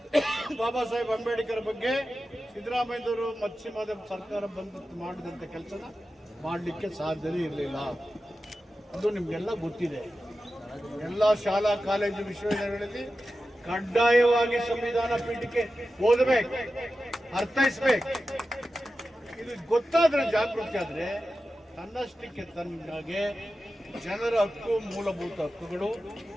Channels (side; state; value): both; normal; correlation 0.93